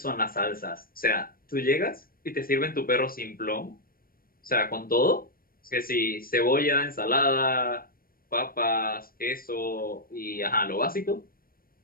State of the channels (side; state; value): right; late; 0.42 ms